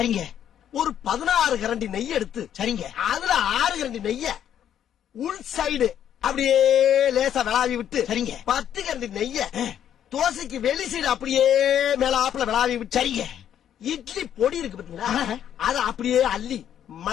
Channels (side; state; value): right; quieter; 9.9 dB